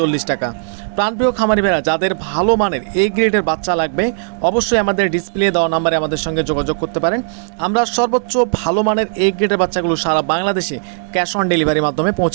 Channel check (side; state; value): left; silent; 68 dB below the other